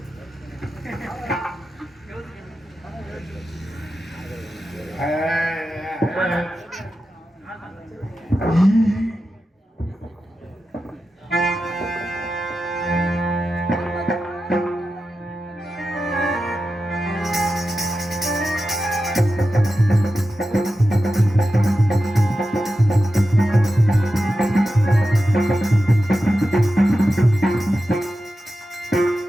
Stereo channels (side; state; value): both; normal; correlation 0.91